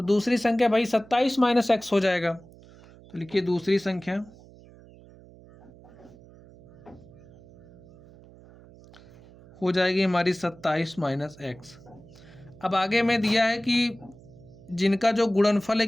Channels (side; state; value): right; noise; hum, 22 dB below the sound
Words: दूसरी संख्या भाई 27 माइनस एक्स हो जाएगा। तो लिखिए दूसरी संख्या हो जाएगी हमारी 27 माइनस एक्स। अब आगे में दिया है कि जिनका जो गुणनफल है